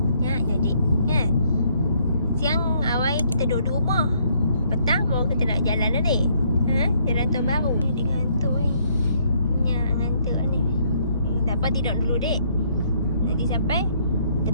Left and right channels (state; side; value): inverted; both; correlation -0.68